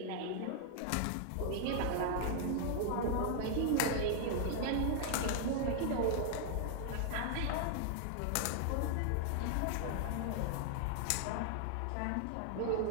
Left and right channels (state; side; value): different; both; correlation 0.00